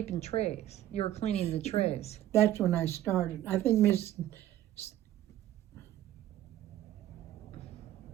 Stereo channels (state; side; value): quieter; left; 12.9 dB